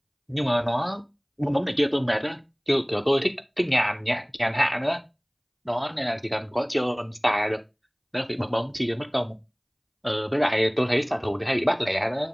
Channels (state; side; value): identical; both; correlation 1.00